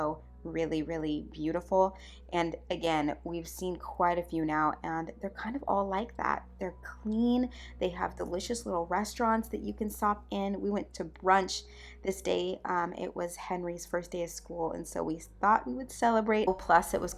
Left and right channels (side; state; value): both; identical; correlation 1.00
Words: really, really beautiful. And again, we've seen quite a few now, and they're kind of all like that. They're clean. They have delicious little restaurants that you can stop in. We went to brunch this day. It was Henry's first day of school, and so we thought we would celebrate. Plus, it was